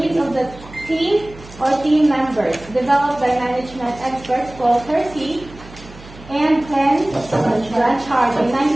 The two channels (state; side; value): noise; right; hum, 19 dB below the sound